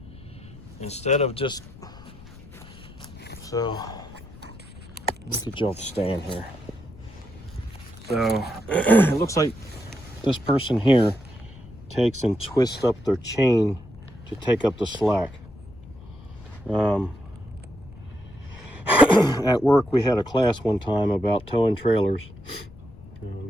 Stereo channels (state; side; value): noise; left; rumble, 19 dB below the sound